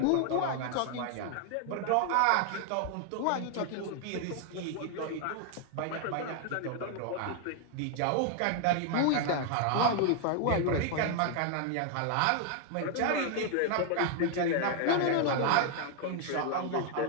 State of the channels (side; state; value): both; different; correlation 0.00